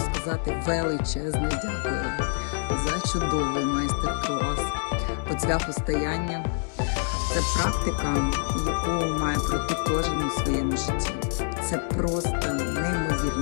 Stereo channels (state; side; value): silent; right; 60 dB below the other